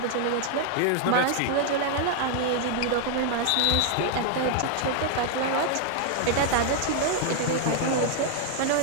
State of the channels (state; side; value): different; both; correlation 0.00